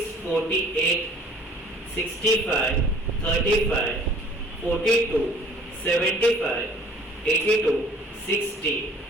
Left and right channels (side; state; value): both; normal; correlation 0.53